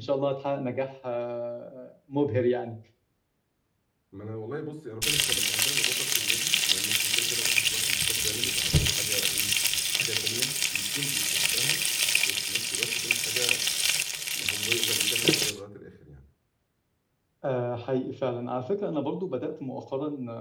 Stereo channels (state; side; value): identical; both; correlation 1.00